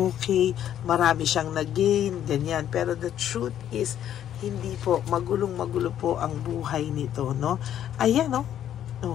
marami siyang nag-gain, ganyan. Pero the truth is, hindi po, magulong-magulo po ang buhay nito, no? Ayan, no?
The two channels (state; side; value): quieter; right; 10.6 dB